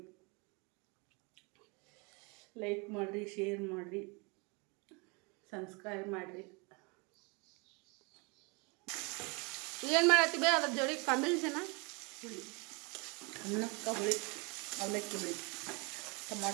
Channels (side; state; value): left; quieter; 30.3 dB